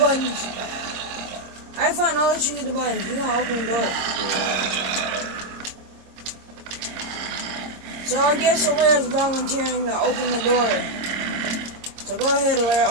I find I'll let you get the buttons. You're going to open the door. So I guess Alaire's volunteering to open the door. So go ahead, Alaire,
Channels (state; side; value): late; left; 26 ms